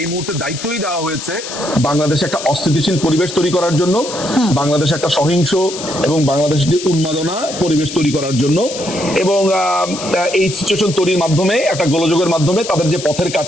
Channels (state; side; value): noise; left; hiss, 9 dB below the sound